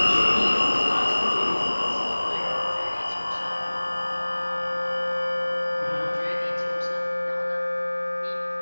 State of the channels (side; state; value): both; inverted; correlation -1.00